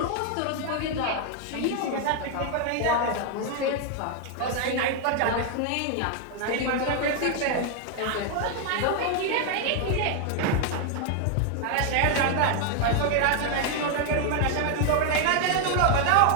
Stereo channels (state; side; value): different; both; correlation 0.00